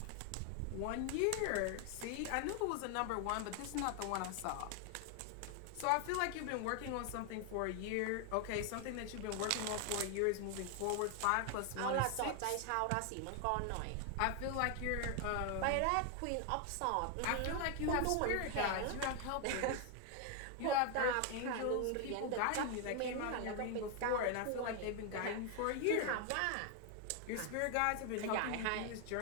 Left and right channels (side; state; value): both; different; correlation 0.00